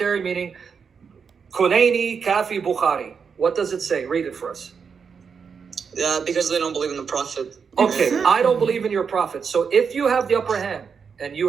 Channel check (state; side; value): quieter; left; 6.1 dB